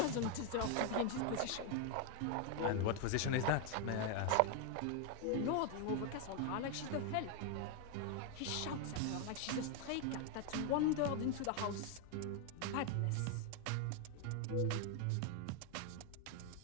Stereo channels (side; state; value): both; different; correlation 0.01